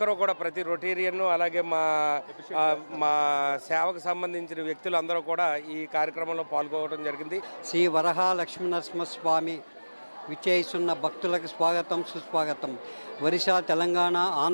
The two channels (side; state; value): both; inverted; correlation -1.00